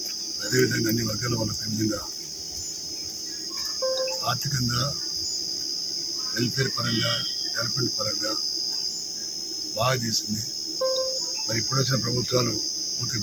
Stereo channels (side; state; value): right; noise; hiss, 19 dB below the sound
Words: అదేవిధంగా అన్ని వర్గాల వాళ్ళకు ఏ విధంగా ఆర్థికంగా వెల్ఫేర్ పరంగా డెవలప్మెంట్ పరంగా బాగా చేసింది. మరి ఇప్పుడు వచ్చిన ప్రభుత్వాలు పూర్తి